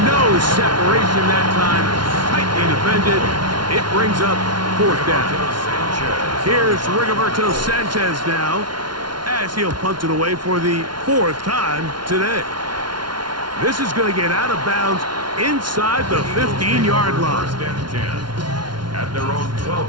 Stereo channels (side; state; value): left; late; 0.71 ms